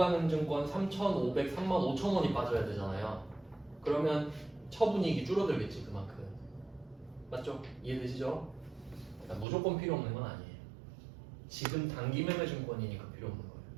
증권 3,500, 35,000원이 빠져야 되잖아요. 그러면 처분이익이 줄어들겠지 그만큼. 맞죠? 이해되시죠? 그러니까 무조건 필요 없는 건 아니에요. 지금 단기 매매 증권이니까 필요 없는 거예요.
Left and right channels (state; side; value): drops out; left; at 9.5 s